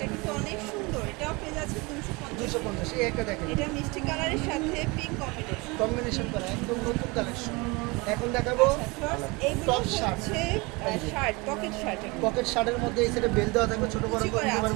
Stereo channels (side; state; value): left; quieter; 26.0 dB